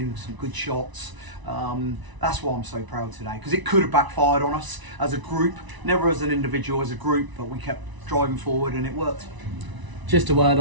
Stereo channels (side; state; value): left; late; 1.0 ms